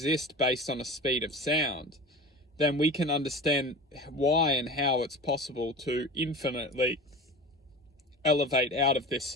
based on a speed of sound, then we can understand why and how it's possible to infinitely elevate out of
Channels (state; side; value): normal; both; correlation 0.33